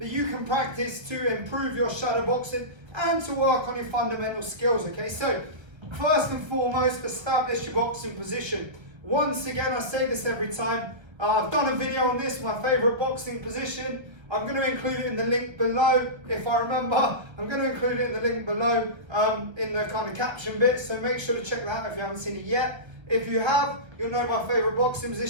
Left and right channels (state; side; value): late; left; 1.3 ms